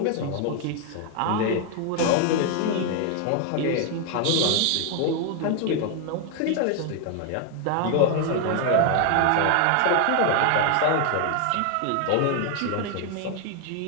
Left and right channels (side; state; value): both; different; correlation 0.01